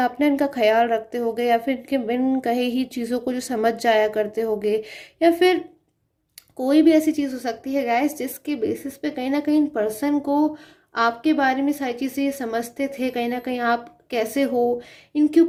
इनका ख्याल रखते होगे, या फिर इनके बिन कहे ही चीज़ों को जो समझ जाया करते होगे, या फिर कोई भी ऐसी चीज़ हो सकती है गाइस जिसके बेसिस पे कहीं ना कहीं पर्सन को आपके बारे में सारी चीज़ें ये समझते थे। कहीं ना कहीं आप कैसे हो, इनके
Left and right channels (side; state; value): both; identical; correlation 1.00